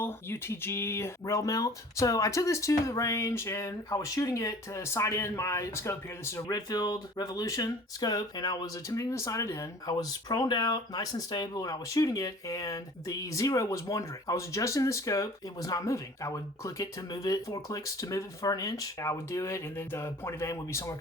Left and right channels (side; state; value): both; normal; correlation 0.47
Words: UTG rail mount. So I took this to the range and I was shooting it to sight in my scope here. This is a Redfield Revolution scope and I was attempting to sight it in. I was proned out, nice and stable, and I was shooting it and the zero was wandering. I was adjusting the scope. It was not moving. I would click it to move it, 4 clicks to move it for an inch. I would do it and then the point of aim would be somewhere